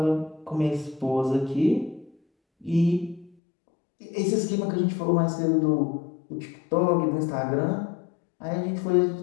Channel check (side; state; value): right; drops out; at 3.4 s